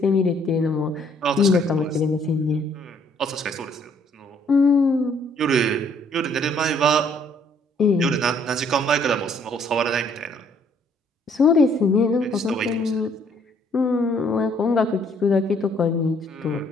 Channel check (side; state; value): both; normal; correlation 0.64